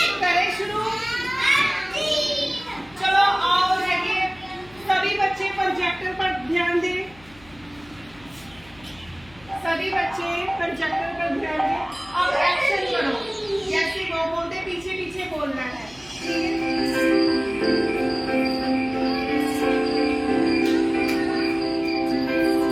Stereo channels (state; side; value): noise; left; hum, 24 dB below the sound